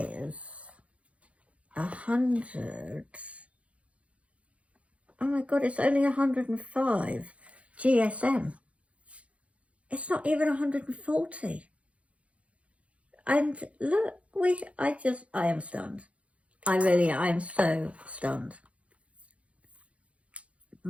100. Oh my God, it's only 105 GSM. It's not even 140. And look, I am stunned. I am so stunned.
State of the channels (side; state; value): left; late; 0.063 ms